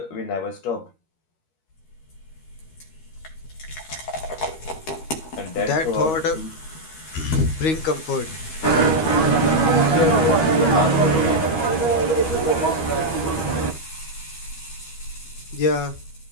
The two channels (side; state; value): right; late; 13 ms